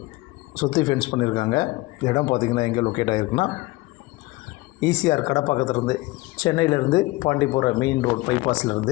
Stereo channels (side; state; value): right; quieter; 20.9 dB